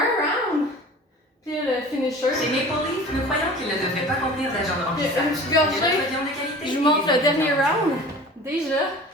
round. Puis le finisher. Chez Maple Leaf, nous croyons qu'il ne devrait pas contenir d'agent de Puis remplissage. une petite gorgée. Des notre viande de qualité Je vous et montre des le dernier ingrédients. round. Déjà.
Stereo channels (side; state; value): both; normal; correlation 0.41